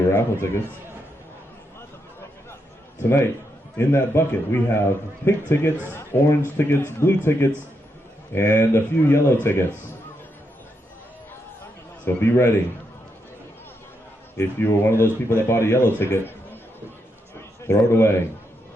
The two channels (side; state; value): both; normal; correlation 0.82